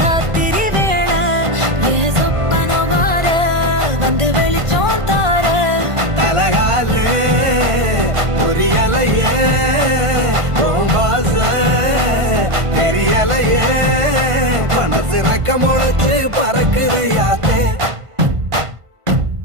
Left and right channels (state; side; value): late; left; 1.5 ms